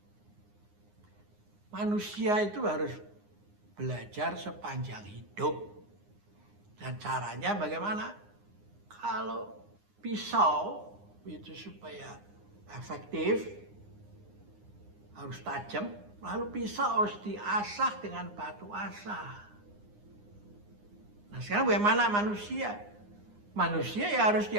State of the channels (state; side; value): late; left; 9.7 ms